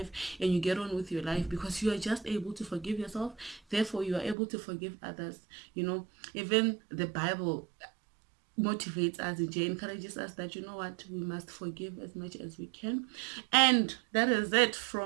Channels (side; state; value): left; drops out; at 4.4 s